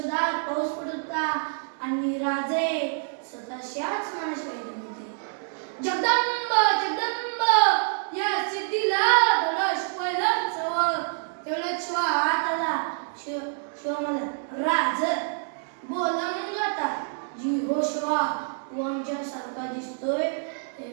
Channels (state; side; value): silent; left; digital silence